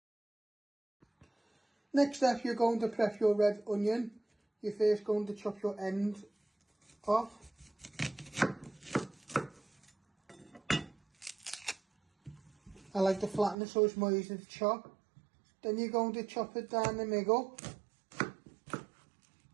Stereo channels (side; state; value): left; drops out; at 13.6 s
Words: Next step, you're going to prep your red onion. You're first going to chop your ends off. I like to flatten it so it's more easy to chop. Then you're going to chop it down the middle.